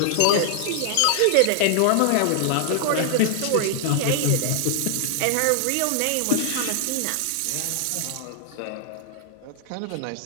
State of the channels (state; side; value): different; both; correlation 0.00